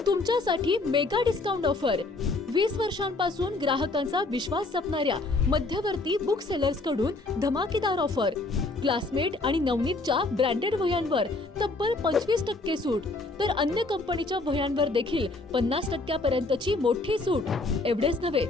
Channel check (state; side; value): quieter; right; 3.2 dB